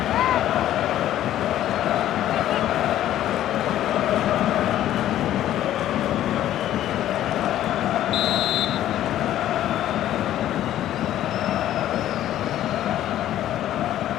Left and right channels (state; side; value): quieter; right; 12.4 dB